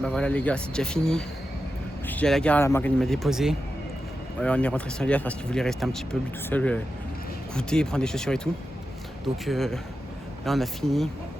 voilà les gars, c'est déjà fini. Je suis à la gare, la Morgane m'a déposé. On est rentré sans Elias parce qu'il voulait rester un petit peu lui tout seul, goûter, prendre des chaussures et tout. Donc là on a fini.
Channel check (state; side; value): normal; both; correlation 0.90